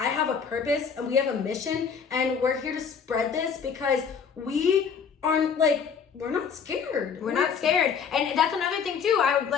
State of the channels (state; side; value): quieter; right; 6.5 dB